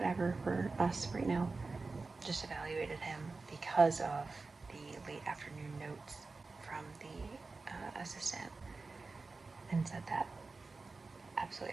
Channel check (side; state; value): left; quieter; 3.9 dB